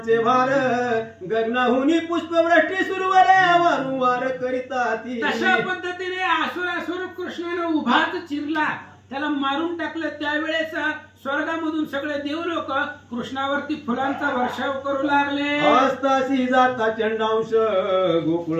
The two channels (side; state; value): both; identical; correlation 1.00